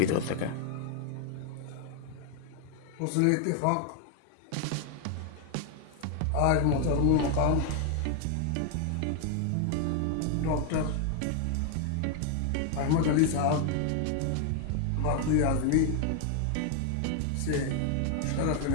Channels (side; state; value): both; different; correlation 0.00